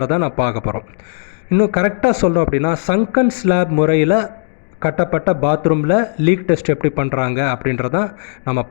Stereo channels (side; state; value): right; silent; digital silence